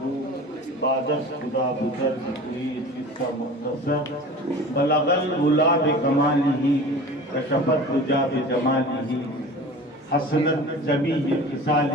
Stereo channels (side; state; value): both; normal; correlation 0.39